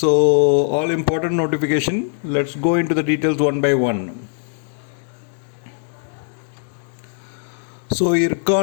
all important notification. Let's go into the details one by one. So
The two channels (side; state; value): right; silent; digital silence